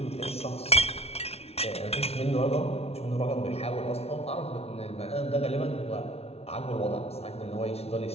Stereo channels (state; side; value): late; right; 0.30 ms